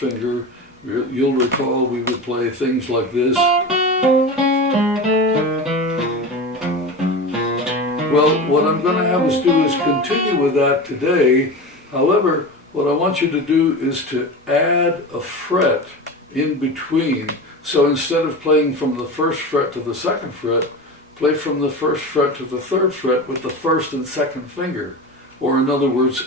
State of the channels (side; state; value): both; normal; correlation 0.28